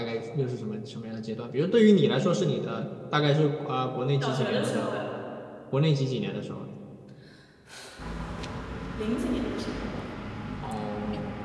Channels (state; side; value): identical; both; correlation 1.00